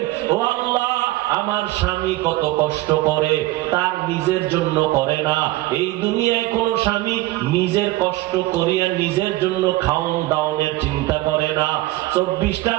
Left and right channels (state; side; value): quieter; left; 17.9 dB